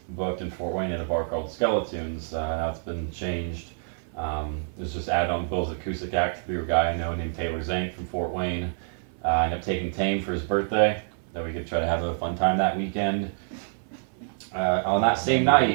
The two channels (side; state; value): left; silent; 56 dB below the other